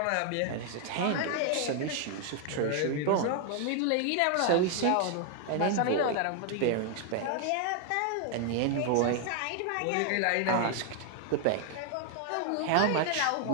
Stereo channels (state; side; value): different; both; correlation 0.00